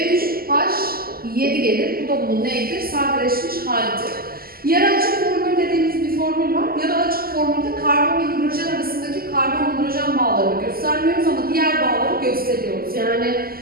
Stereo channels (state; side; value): late; left; 0.43 ms